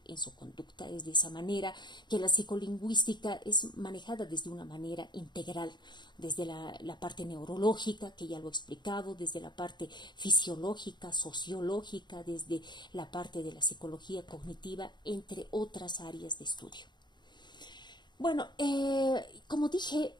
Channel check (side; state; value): right; late; 0.21 ms